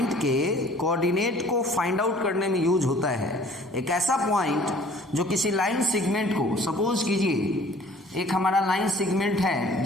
के कोऑर्डिनेट को फाइंड आउट करने में यूज होता है। एक ऐसा पॉइंट जो किसी लाइन सेगमेंट को, सपोज कीजिए एक हमारा लाइन सेगमेंट है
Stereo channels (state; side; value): normal; both; correlation 0.52